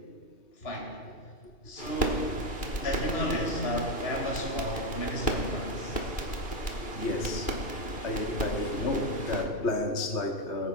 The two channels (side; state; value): right; late; 2.4 ms